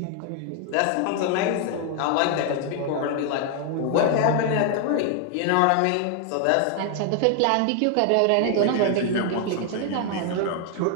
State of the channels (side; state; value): both; different; correlation 0.00